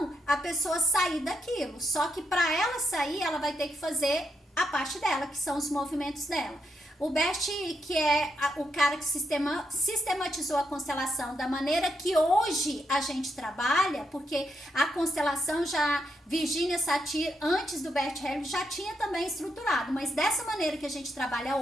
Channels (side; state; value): both; normal; correlation 0.80